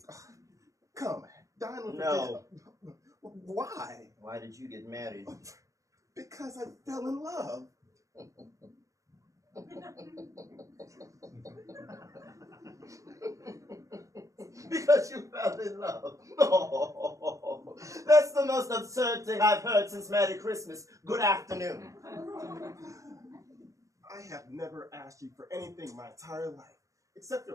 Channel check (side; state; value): left; late; 0.16 ms